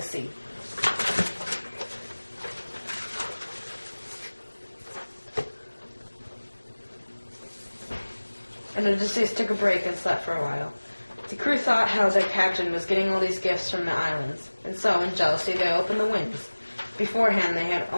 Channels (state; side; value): inverted; both; correlation -1.00